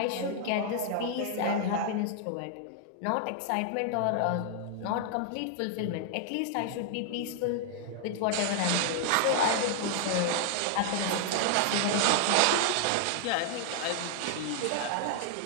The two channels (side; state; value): both; different; correlation -0.01